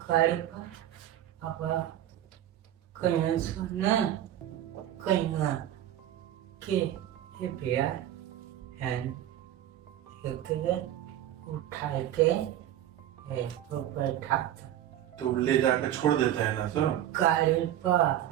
गाड़ी पर। अब कहीं सुना कहीं के ये भैया है एक उठा के तो बैठा था तो ले जाकर छोड़ देते हैं ना सब गाड़ी पर।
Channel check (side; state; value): left; quieter; 11.9 dB